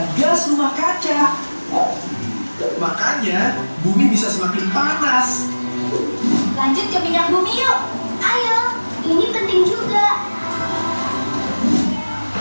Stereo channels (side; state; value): both; inverted; correlation -1.00